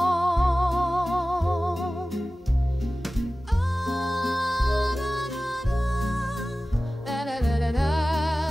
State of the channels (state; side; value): normal; both; correlation 0.96